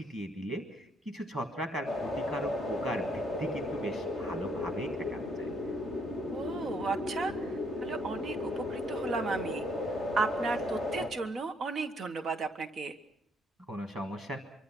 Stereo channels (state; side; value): normal; both; correlation 0.69